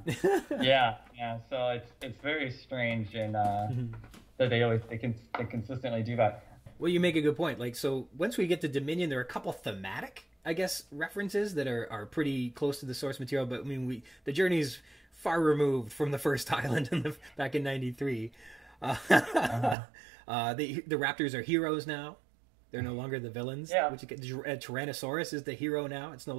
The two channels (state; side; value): drops out; left; at 19.8 s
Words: yeah. So it's very strange, and that they consistently do that. Well, you make a good point. Like, so once we get to Dominion, there are a couple thematic, I guess, references that are pretty close to the source material. But I mean, the journey's far removed from the first island back in '93. The Raptors are heroes now. They're no longer the villains. Yeah. Tyrannosaurus is the hero now. It's no